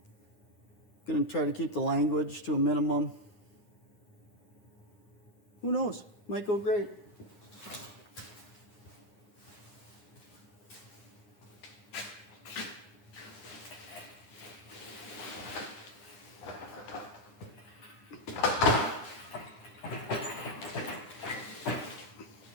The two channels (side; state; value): right; late; 9.7 ms